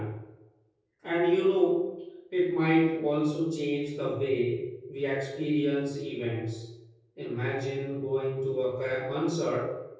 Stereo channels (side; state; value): both; identical; correlation 1.00